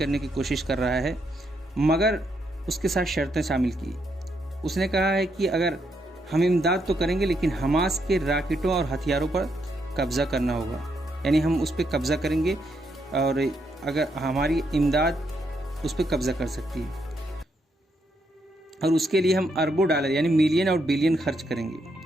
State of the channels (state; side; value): normal; both; correlation 0.78